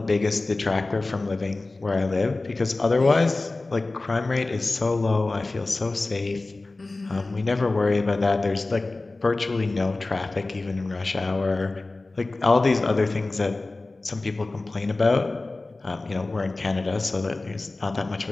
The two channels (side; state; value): right; quieter; 3.2 dB